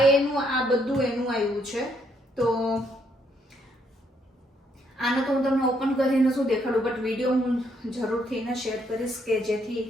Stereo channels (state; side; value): normal; both; correlation 0.72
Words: બધું એનું આવ્યું છે. તો આને તો હું તમને ઓપન કરીને શું દેખાડું, બટ વિડીયો હું જરૂરથી એને શેર કરીશ કે જેથી